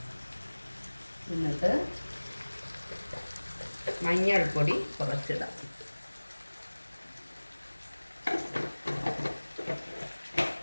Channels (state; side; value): inverted; both; correlation -1.00